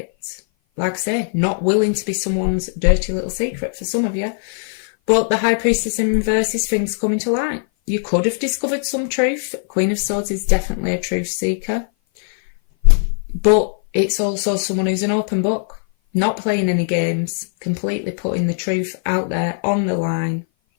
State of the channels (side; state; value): right; silent; 56 dB below the other